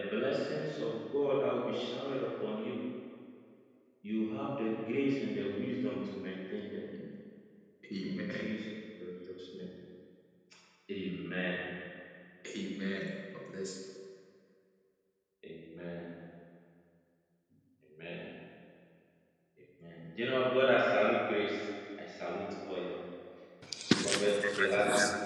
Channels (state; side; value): identical; both; correlation 1.00